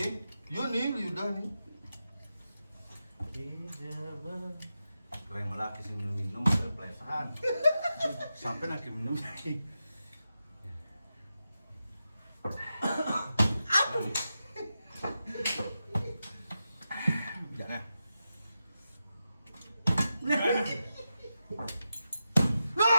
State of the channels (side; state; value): both; inverted; correlation -0.90